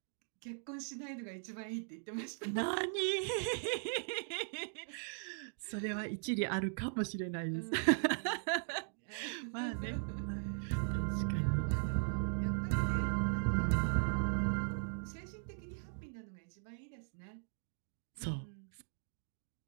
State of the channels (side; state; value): left; silent; digital silence